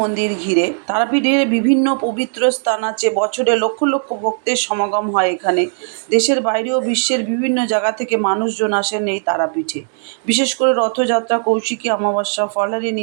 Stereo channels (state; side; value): silent; left; digital silence